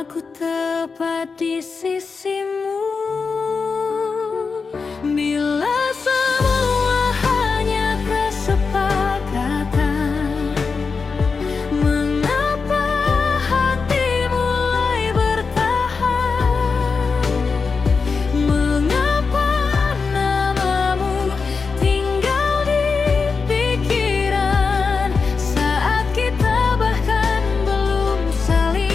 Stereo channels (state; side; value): quieter; right; 4.9 dB